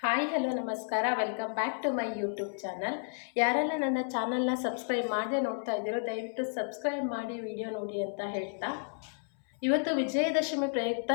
Hi hello ನಮಸ್ಕಾರ, welcome back to my YouTube channel. ಯಾರೆಲ್ಲ ನನ್ನ ಚಾನಲ್ನ ಸಬ್ಸ್ಕ್ರೈಬ್ ಮಾಡದೆ ನೋಡ್ತಾ ಇದ್ದೀರೋ ದಯವಿಟ್ಟು ಸಬ್ಸ್ಕ್ರೈಬ್ ಮಾಡಿ ವಿಡಿಯೋ ನೋಡಿ ಅಂತ ಹೇಳ್ತಾ, ಇವತ್ತು ವಿಜಯದಶಮಿ ಪ್ರಯುಕ್ತ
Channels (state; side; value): silent; right; 56 dB below the other